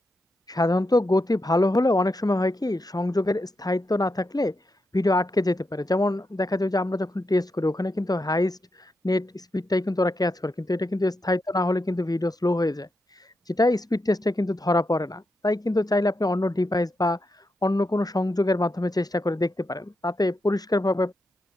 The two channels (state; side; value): normal; both; correlation 0.85